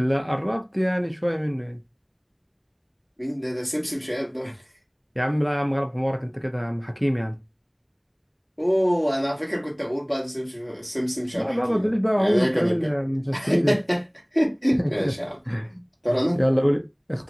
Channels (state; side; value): identical; both; correlation 1.00